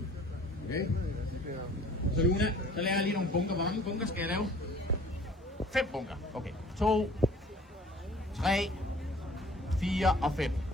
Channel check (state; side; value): normal; both; correlation 0.50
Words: Så Luna, så laver jeg lige nogle bunker. Hvor mange bunker skal jeg lave? 5 bunker. Okay. 2, 3, 4 og 5.